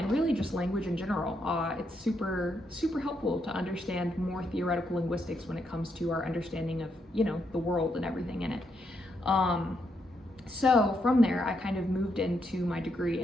really just language in general. It's super helpful to understand more theoretical linguistics when it comes to our understanding of, the world and everything in it. So from there, I kind of moved into my degree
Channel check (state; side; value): normal; both; correlation 0.79